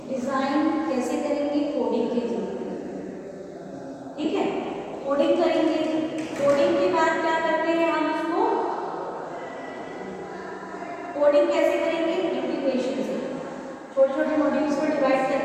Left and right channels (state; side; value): identical; both; correlation 1.00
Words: डिजाइन कैसे करेंगे, कोडिंग के थ्रू, ठीक है, कोडिंग करेंगे, कोडिंग के बाद क्या करते हैं हम उसको, कोडिंग कैसे करेंगे, इंटीग्रेशन से, छोटे छोटे मॉड्यूल्स को डिवाइड